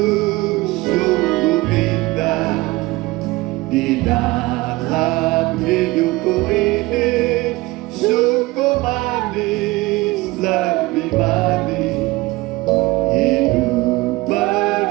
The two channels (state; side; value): quieter; left; 20.9 dB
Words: sungguh indah di dalam hidupku ini, sungguh manis, lebih manis hidup